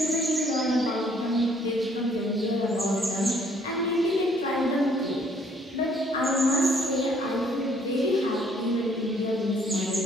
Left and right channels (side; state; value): both; normal; correlation 0.63